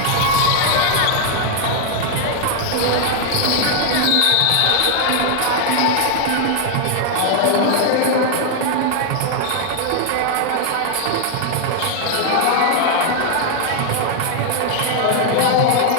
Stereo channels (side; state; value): both; different; correlation 0.00